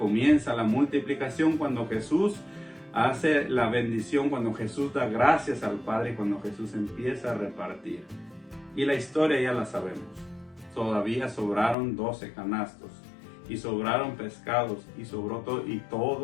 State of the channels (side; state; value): right; drops out; at 11.8 s